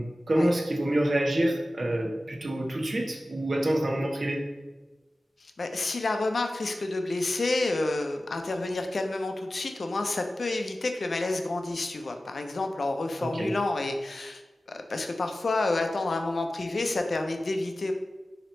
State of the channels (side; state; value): both; normal; correlation 0.95